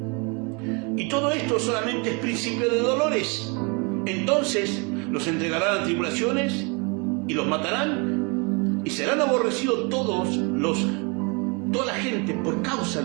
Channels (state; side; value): quieter; left; 31.9 dB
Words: Y todo esto solamente es principio de dolores. Entonces los entregarán a tribulaciones y los matarán, y serán aborrecidos toda la gente por causa